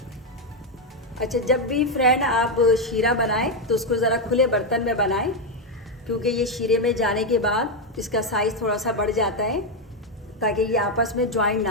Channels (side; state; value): both; normal; correlation 0.04